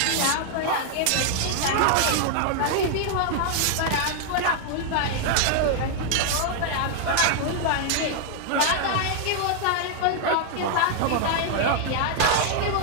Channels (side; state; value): both; different; correlation 0.00